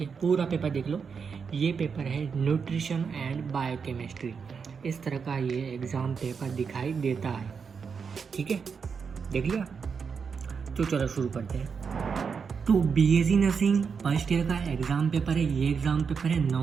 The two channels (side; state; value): left; quieter; 6.0 dB